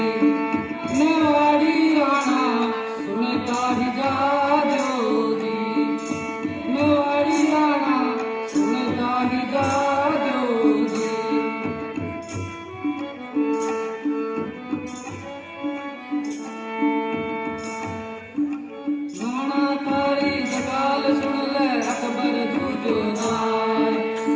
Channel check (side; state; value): both; identical; correlation 1.00